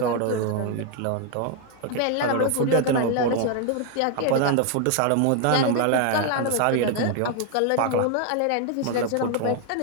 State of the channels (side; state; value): both; different; correlation 0.01